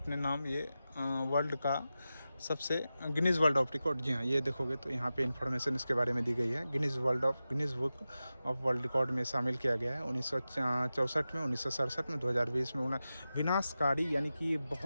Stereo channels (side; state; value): both; inverted; correlation -0.93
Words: नाम, ये वर्ल्ड का सबसे गिनीज वर्ल्ड ऑफ रिकॉर्ड। जी हाँ, ये देखोगे तो यहाँ पे इन्फॉर्मेशन इसके बारे में दी गई है। Guinness book of world record में शामिल किया गया है 1964 में, 1967 में, 2020 में। विनाशकारी यानी कि